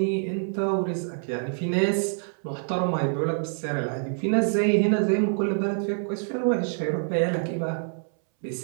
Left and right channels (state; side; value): silent; left; 61 dB below the other